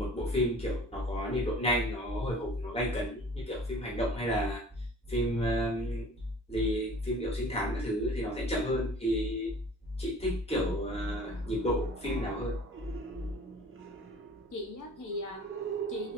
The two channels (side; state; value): both; normal; correlation 0.47